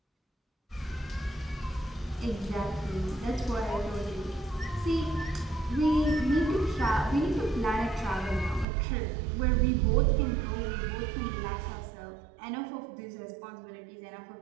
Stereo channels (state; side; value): drops out; left; at 8.7 s